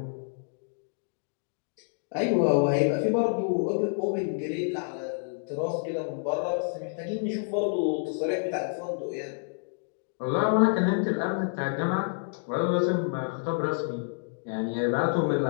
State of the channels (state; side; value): silent; right; digital silence